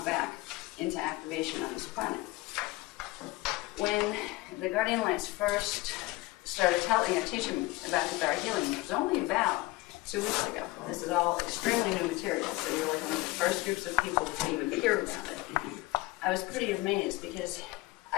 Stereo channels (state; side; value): quieter; right; 20.5 dB